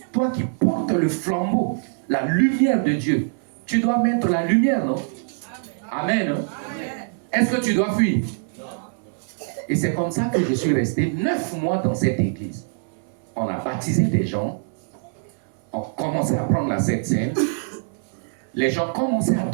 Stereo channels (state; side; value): silent; left; 63 dB below the other